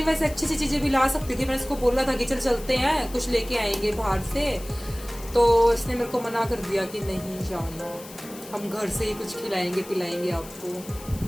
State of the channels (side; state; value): left; noise; hiss, 17 dB below the sound